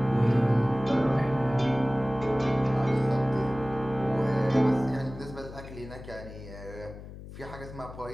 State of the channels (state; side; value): noise; left; hum, 14 dB below the sound